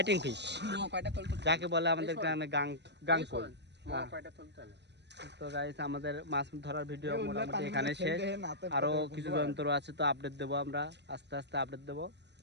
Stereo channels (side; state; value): left; late; 0.50 ms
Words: ফিশ কয়টা তোল যাকে বলে আমাদের গ্রামে গাংকল। কয়টা তুলতে না তো গাইস আমাদের মাছ ধরার ভিডিও মোটামুটি এখানে শেষ, আরো কিছু যন্ত্র আছে তো আপডেট দেবো আমরা, আস্তে আস্তে আপডেট দেবো।